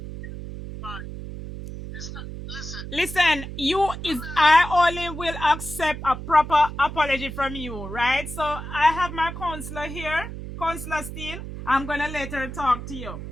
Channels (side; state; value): right; noise; hum, 9 dB below the sound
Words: Listen, Listen, I only will accept a proper apology from you, right? So I have my counselor here, Counselor Steele. I'm gonna let her talk to you.